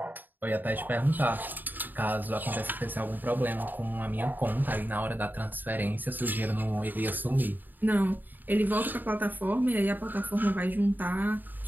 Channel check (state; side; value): late; left; 0.089 ms